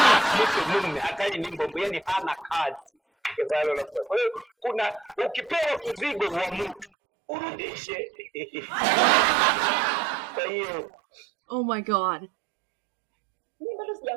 Mungu hatari ni mbombo, yani hana kazi. Kwa hiyo kuna ukipewa mzigo wa mtu urudishe. Kwa hiyo oh my God. Mimi bado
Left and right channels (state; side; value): drops out; left; at 6.9 s